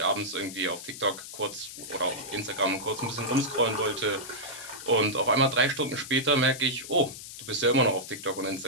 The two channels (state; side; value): noise; left; hiss, 12 dB below the sound